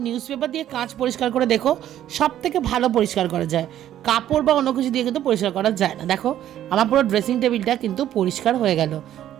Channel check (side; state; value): left; quieter; 11.7 dB